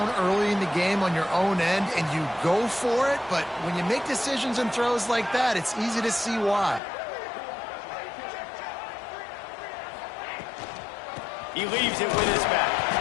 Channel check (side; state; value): right; drops out; at 6.8 s